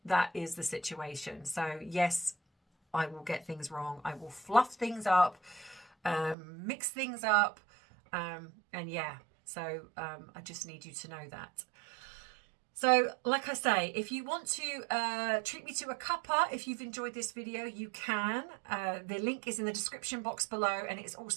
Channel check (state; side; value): drops out; left; at 6.4 s